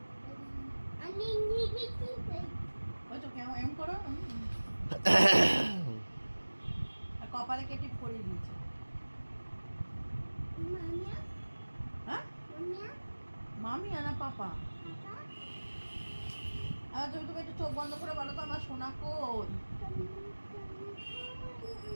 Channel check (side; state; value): both; inverted; correlation -1.00